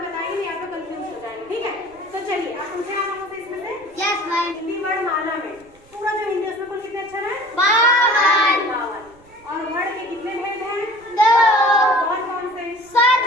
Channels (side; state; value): right; noise; rumble, 28 dB below the sound